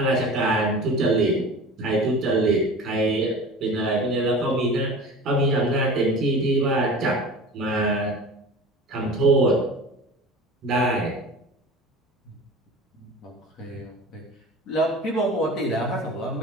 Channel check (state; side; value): normal; both; correlation 0.37